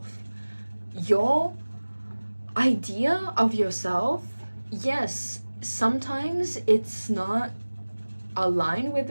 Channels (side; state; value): both; inverted; correlation -1.00